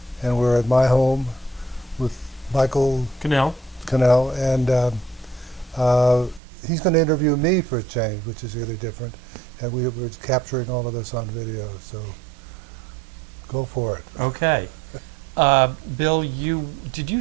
and we're at my home with Michael Cannell. Cannell, and uh, he's going to interview me for a change, which is really different, and we're capturing all of this on video, so go for it. Okay. Bill, did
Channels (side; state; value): left; drops out; at 6.4 s